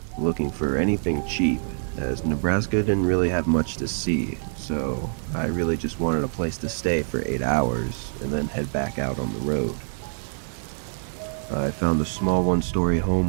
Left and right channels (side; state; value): left; silent; digital silence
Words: looking for anything cheap, as Nebraska didn't really have much to see, so I really just wanted a place to stay for 8 hours and then head back out on the road. I found a small one-story